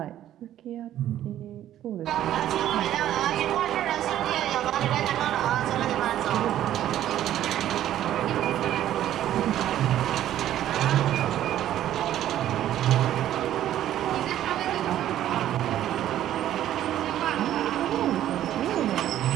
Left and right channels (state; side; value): quieter; left; 12.2 dB